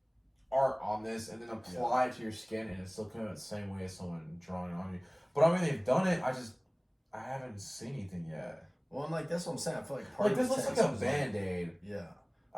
art on this and then apply it to your skin, and it's still coming out the same way as someone drawing on you. But I mean, they've done it. I haven't seen anything yet. Well, and like that's what I'm saying. I feel like this looks like a Band-Aid. Yeah.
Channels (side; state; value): both; identical; correlation 1.00